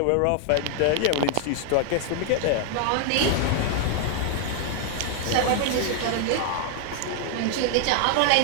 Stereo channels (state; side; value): different; both; correlation 0.00